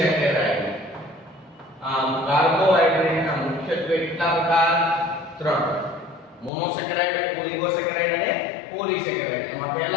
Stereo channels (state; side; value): drops out; right; at 6.5 s